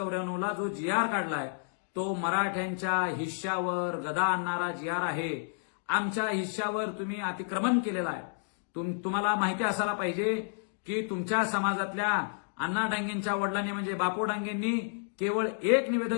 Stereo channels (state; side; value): silent; right; digital silence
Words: जो GR काढलाय तो मराठ्यांच्या हिश्श्यावर गदा आणणारा GR आहे. आमच्या हिश्श्यावर तुम्ही अतिक्रमण केलेलं आहे. तुम्हाला माहिती असायला पाहिजे की तुमच्या समाजातल्या अण्णा डांगेंच्या वडिलांनी म्हणजे बापू डांगेंनी केवळ एक